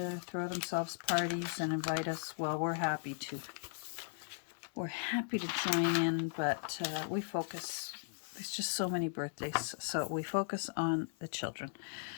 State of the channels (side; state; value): right; silent; digital silence